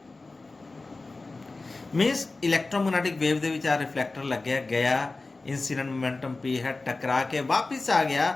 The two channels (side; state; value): right; quieter; 3.4 dB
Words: means electromagnetic wave दे विच आ रिफ्लेक्टर लग गया, इंसिडेंट मोमेंटम P है, टकरा के वापिस आ